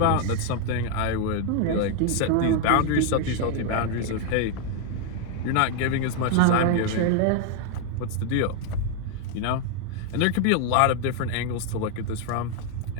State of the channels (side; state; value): both; different; correlation 0.00